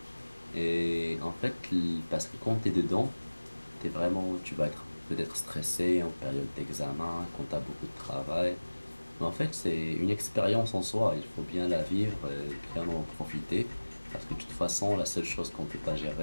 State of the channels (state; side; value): inverted; both; correlation -1.00